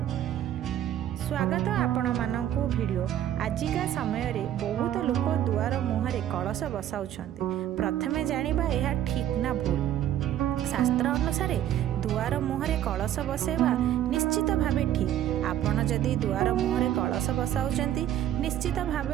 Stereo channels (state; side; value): quieter; left; 11.6 dB